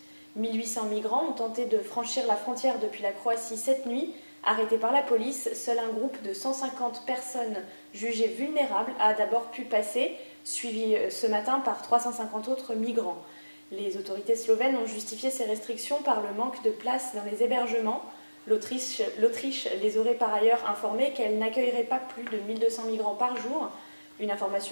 1800 migrants ont tenté de franchir la frontière depuis la Croatie cette nuit. Arrêtés par la police, seul un groupe de 150 personnes jugées vulnérables a d'abord pu passer, suivi ce matin par 350 autres migrants. Les autorités slovènes ont justifié ces restrictions par le manque de place dans les hébergements. L'Autriche les aurait par ailleurs informés qu'elle n'accueillerait pas plus de 1200 migrants par jour. Une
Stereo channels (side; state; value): both; inverted; correlation -1.00